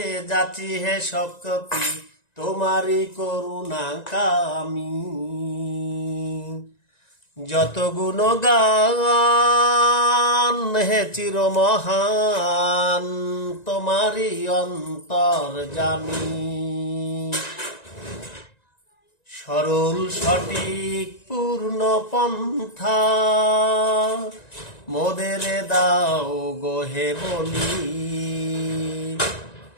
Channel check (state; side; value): late; right; 1.9 ms